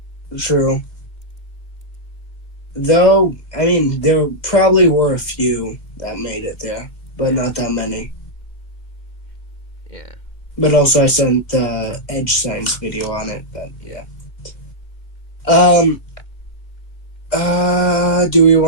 True. Though, I mean, there probably were a few that made it there, but not that many. Yeah. But also I sent the Edge Science video on it, but yeah. Do we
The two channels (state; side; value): late; right; 2.2 ms